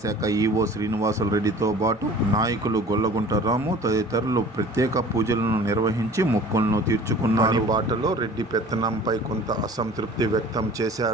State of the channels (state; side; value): normal; both; correlation 0.46